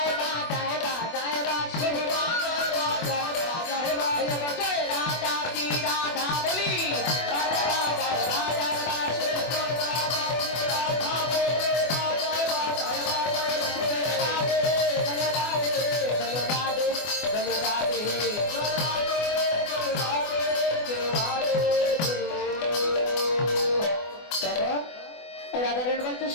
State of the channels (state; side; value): late; right; 24 ms